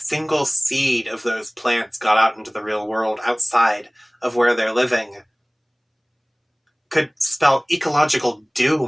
seed of those plants got out into the real world outside of where they're living could spell ecological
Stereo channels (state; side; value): identical; both; correlation 1.00